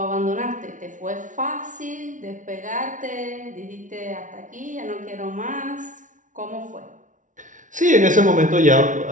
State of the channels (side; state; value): left; late; 0.37 ms